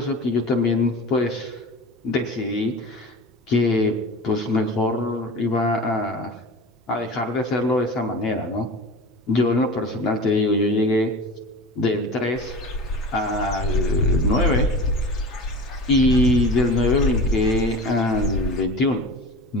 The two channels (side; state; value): both; normal; correlation 0.34